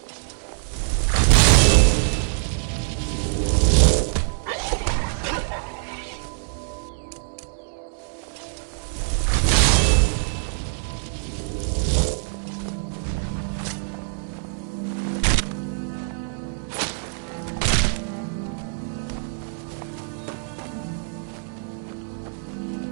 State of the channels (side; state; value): left; silent; digital silence